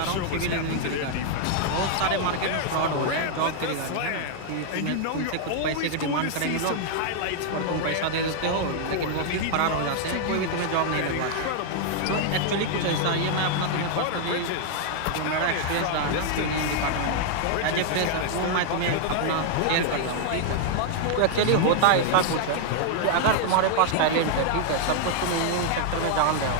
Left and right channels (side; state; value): both; different; correlation 0.00